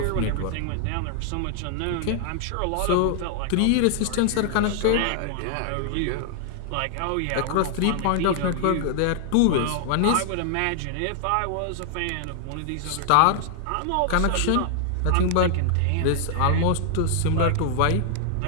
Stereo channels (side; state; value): both; different; correlation 0.00